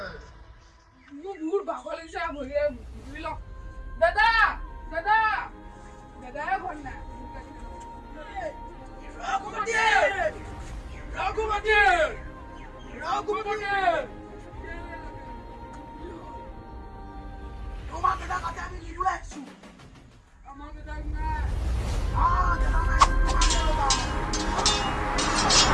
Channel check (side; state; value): both; identical; correlation 1.00